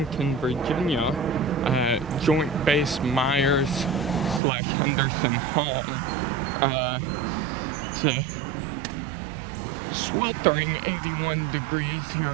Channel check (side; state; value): left; drops out; at 4.4 s